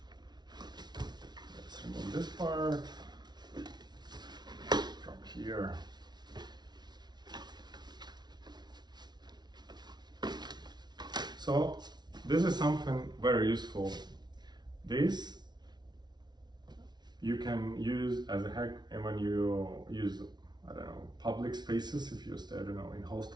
let's remove this part from here. So this is something very useful. This you can use as a hack, and when you use, I don't know, public spaces. If you stay, I don't know, in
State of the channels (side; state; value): left; late; 0.20 ms